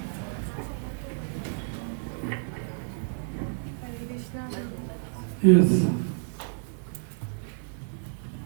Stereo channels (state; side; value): silent; left; digital silence